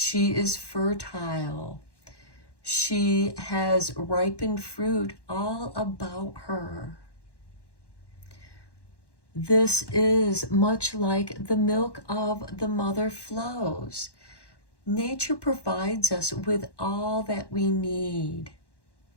is fertile. She has ripened fruit all about her. This is much like the milk of the mother flows. Nature provides us with all that we need.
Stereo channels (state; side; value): late; right; 1.1 ms